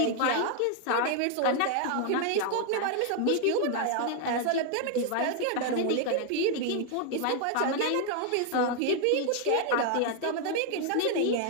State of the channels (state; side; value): different; both; correlation 0.00